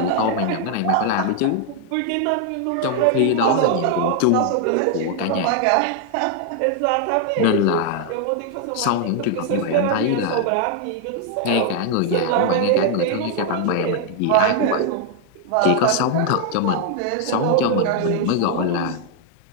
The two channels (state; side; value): different; both; correlation 0.00